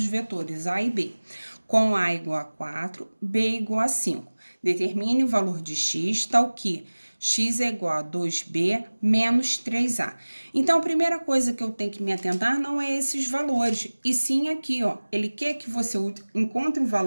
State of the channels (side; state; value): both; inverted; correlation -1.00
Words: vetores A e B, com A igual a 4, B igual a 5. Determine o valor de x, tal que x é igual a 2b menos 3a. Então, a primeira coisa que eu tenho que me atentar não é esses valores, e sim aqui, ó. Ele quer que você encontre um